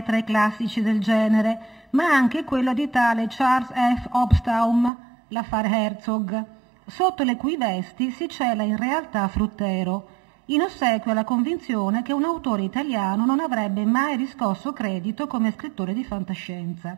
tra i classici del genere, ma anche quello di tale Charles F. Hobsbawm, l'affare Herzog, sotto le cui vesti si cela in realtà Fruttero, in ossequio alla convinzione che un autore italiano non avrebbe mai riscosso credito come scrittore di fantascienza.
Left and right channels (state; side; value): drops out; left; at 4.9 s